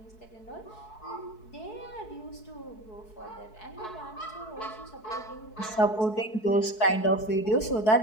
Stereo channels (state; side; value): late; right; 4.6 ms